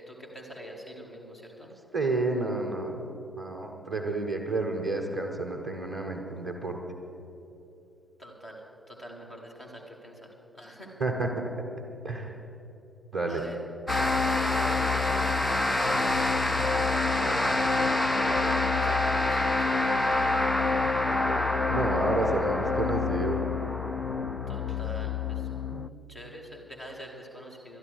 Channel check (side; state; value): both; normal; correlation 0.74